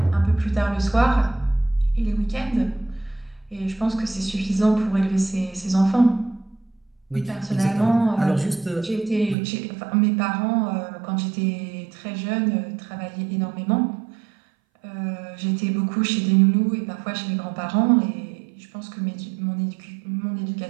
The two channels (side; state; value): left; drops out; at 9.3 s